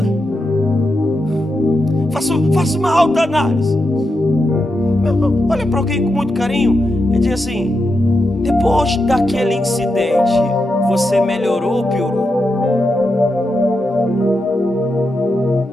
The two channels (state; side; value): normal; both; correlation 0.86